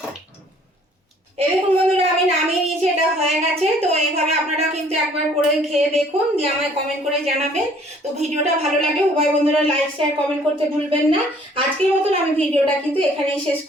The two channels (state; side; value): normal; both; correlation 0.58